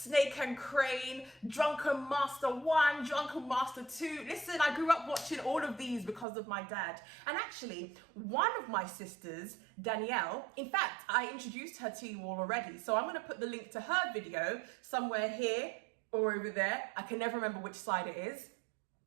and Crane, Drunken Master 1, Drunken Master 2. Listen, I grew up watching all of these because of my dad. And actually, one of my sisters, Danielle, in fact, I introduced her to you all already. So I'm gonna put the link to her video somewhere here or over there. I can never remember which side it is.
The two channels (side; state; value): left; drops out; at 6.2 s